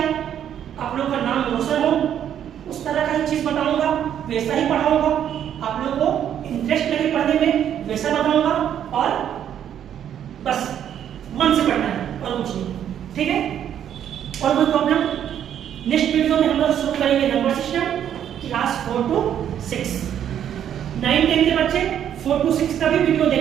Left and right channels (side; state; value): left; quieter; 9.8 dB